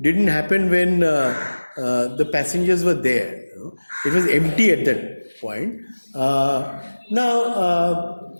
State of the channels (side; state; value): both; inverted; correlation -1.00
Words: happen when the passengers were there. It was empty at that point. Now,